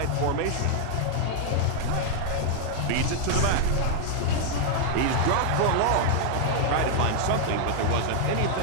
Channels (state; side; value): different; both; correlation 0.00